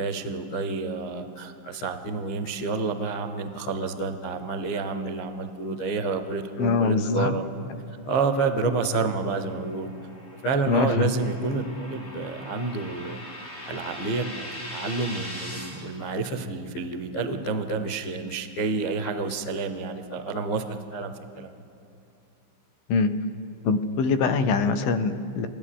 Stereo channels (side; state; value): right; late; 15 ms